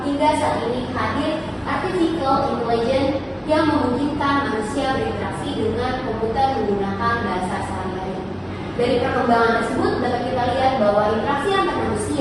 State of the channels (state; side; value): identical; both; correlation 1.00